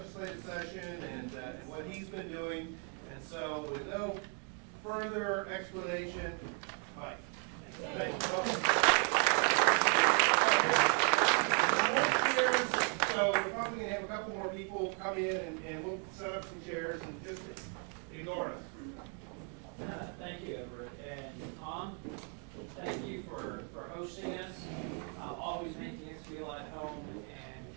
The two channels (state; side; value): quieter; left; 39.4 dB